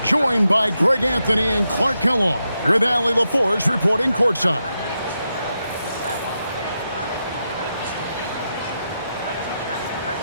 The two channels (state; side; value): inverted; both; correlation -0.86